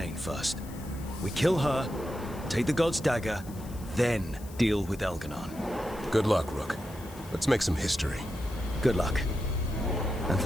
first. We kill her, take the god's dagger, then deal with Elganon. Good luck, Rook. Let's make some history. Good luck. And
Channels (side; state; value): left; noise; hiss, 20 dB below the sound